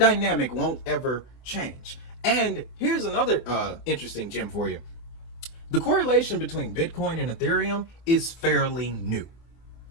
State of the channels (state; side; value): late; right; 24 ms